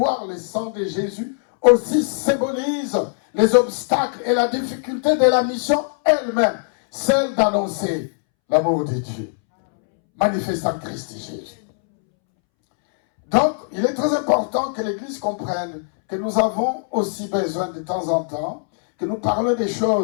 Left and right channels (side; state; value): right; silent; 65 dB below the other